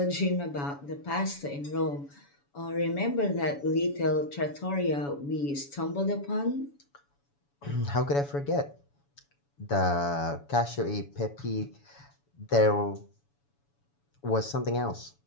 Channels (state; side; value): late; right; 7.1 ms